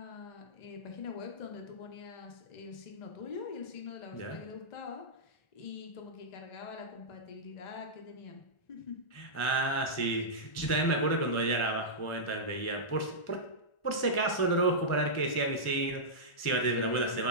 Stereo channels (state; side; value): late; right; 1.4 ms